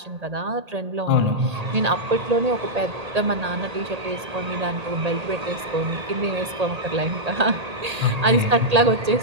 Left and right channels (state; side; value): late; left; 1.8 ms